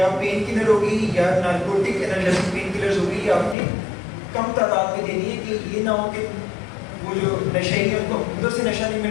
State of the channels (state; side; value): drops out; right; at 3.6 s